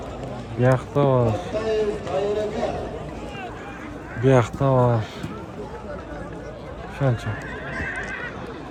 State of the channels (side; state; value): both; identical; correlation 1.00